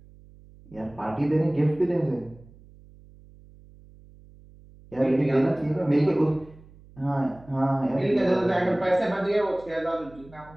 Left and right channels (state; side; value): noise; right; hum, 23 dB below the sound